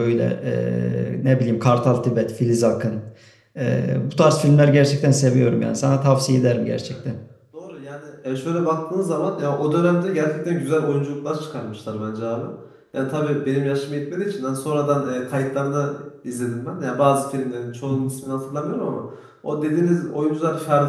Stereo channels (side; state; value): both; identical; correlation 1.00